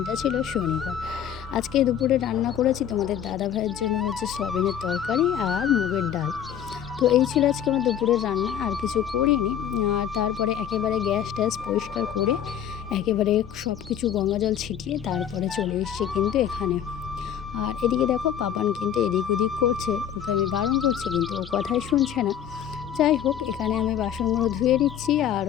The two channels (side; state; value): right; quieter; 9.7 dB